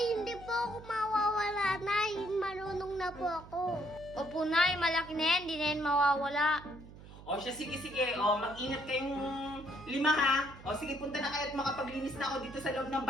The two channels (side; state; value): right; noise; hum, 17 dB below the sound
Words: hindi po ako mawawala, Nay. Marunong na po ako. Opo, Nay. Malaki na yan. Hindi na yan mawawala. O siya, sige. O, mag-ingat kayong 5, ha? O, sige, punta na kayo at makapaglinis na ako dito sa loob ng